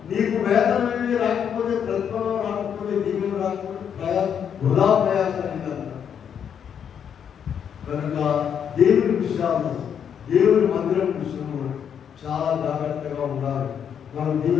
నీకు వేతనం ఏమి రాకపోతే, ప్రతిఫలం రాకపోతే, దీవెన రాకపోతే వృధా ప్రయాసాన్ని కనుక దేవుని విషయాలు, దేవుని మందిరం విషయంలో చాలా జాగ్రత్తగా ఉండాలి. మనం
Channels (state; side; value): quieter; right; 8.1 dB